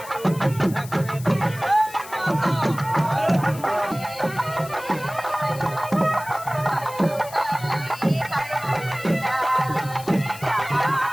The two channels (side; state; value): left; noise; hiss, 16 dB below the sound